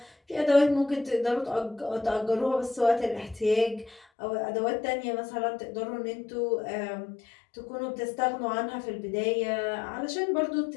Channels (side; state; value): right; drops out; at 4.0 s